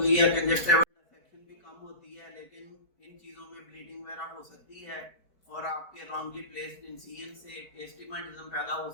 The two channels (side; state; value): right; late; 4.8 ms